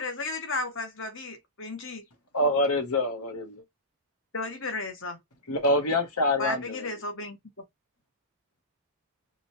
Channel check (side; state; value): both; normal; correlation -0.20